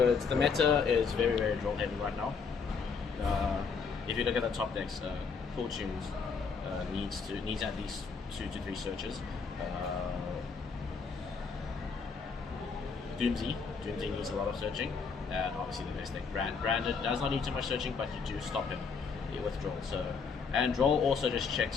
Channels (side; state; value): right; quieter; 5.4 dB